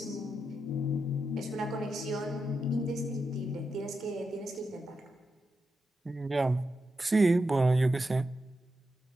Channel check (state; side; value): normal; both; correlation 0.87